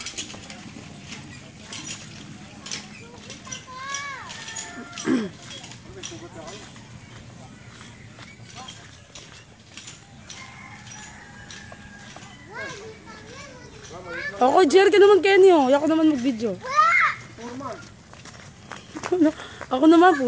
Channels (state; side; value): identical; both; correlation 1.00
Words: Ako, Jer, ka naman, Kenny, oh. Ako naman mag-video. Ako naman,